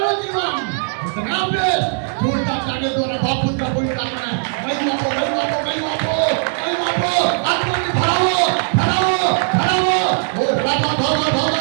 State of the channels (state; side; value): silent; left; digital silence